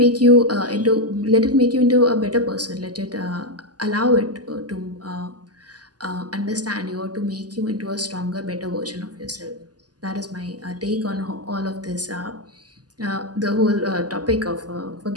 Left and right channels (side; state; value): left; late; 0.68 ms